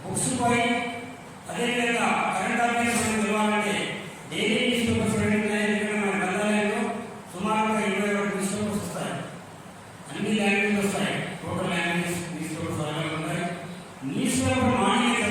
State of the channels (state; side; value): identical; both; correlation 1.00